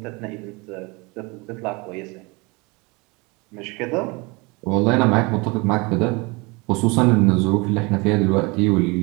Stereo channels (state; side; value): quieter; left; 27.0 dB